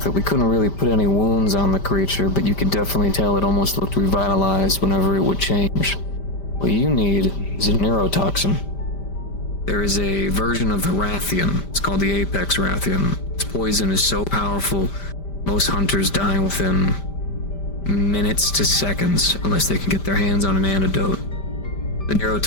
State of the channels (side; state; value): right; late; 5.1 ms